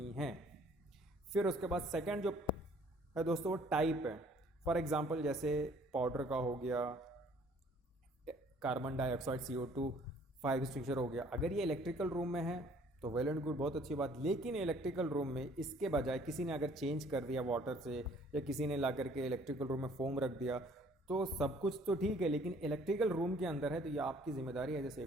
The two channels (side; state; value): both; normal; correlation 0.58